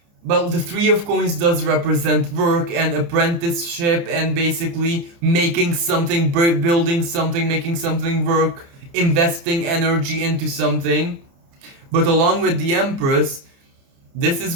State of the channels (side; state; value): left; late; 29 ms